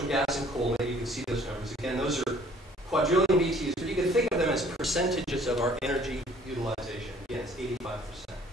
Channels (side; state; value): both; normal; correlation 0.56